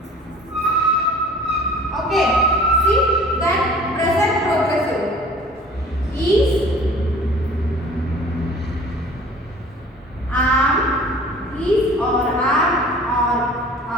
Okay, see, then present progressive E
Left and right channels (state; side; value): normal; both; correlation 0.47